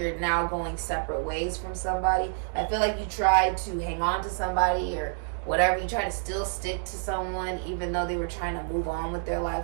now going separate ways from somebody. I feel like you tried to hang on to somebody or whatever. You try to still stick to someone even though they were trying to move on with their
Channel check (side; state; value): left; silent; digital silence